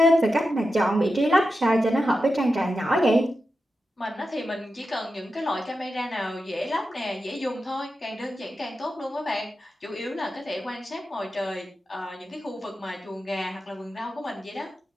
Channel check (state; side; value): normal; both; correlation 0.90